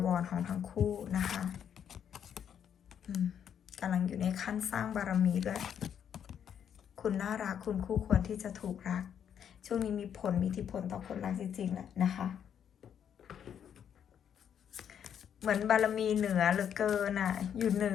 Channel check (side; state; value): right; quieter; 8.7 dB